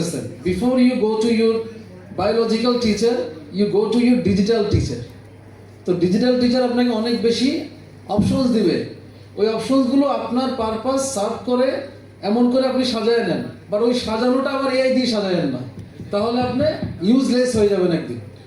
Before you go to your biological teacher, you go to your digital teacher. তো ডিজিটাল টিচার আপনাকে অনেক বেশি অপশনস দিবে, ওই অপশনসগুলো আপনার পারপাস সার্ভ করে এমন করে আপনি সাজায় নেন, বাট ওই সাজানোটা আবার এআই দিয়ে সাজায়েন না, তাহলে আপনি ইউজলেস হয়ে যাবেন একদিন,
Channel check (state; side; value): identical; both; correlation 1.00